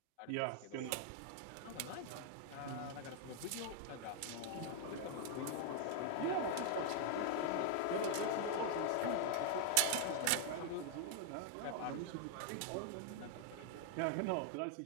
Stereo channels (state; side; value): different; both; correlation -0.01